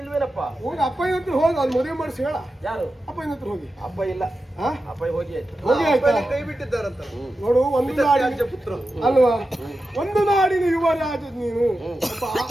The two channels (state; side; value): normal; both; correlation 0.91